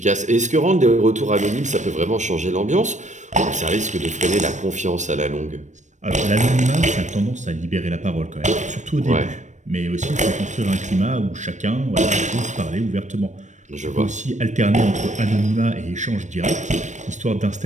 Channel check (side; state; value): left; late; 0.35 ms